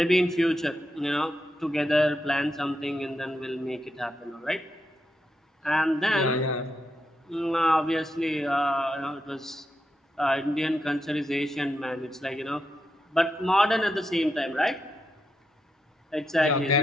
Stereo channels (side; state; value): both; normal; correlation 0.85